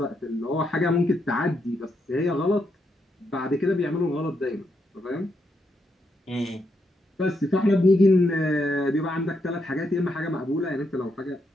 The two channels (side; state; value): both; normal; correlation 0.80